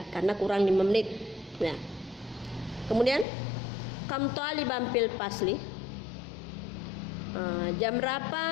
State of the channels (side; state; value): right; drops out; at 3.2 s